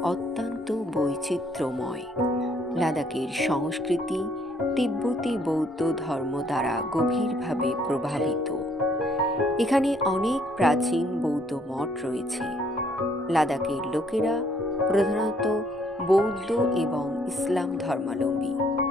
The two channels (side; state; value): both; normal; correlation 0.66